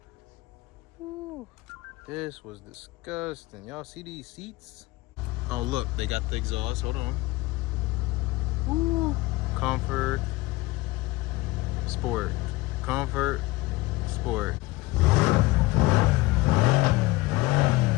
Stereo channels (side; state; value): right; quieter; 20.2 dB